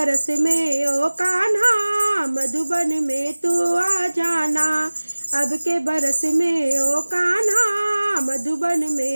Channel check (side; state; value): both; inverted; correlation -1.00